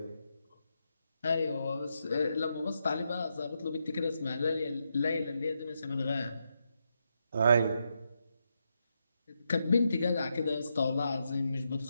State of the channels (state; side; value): inverted; both; correlation -0.83